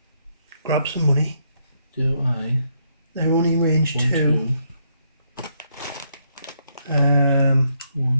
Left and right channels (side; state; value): both; inverted; correlation -0.75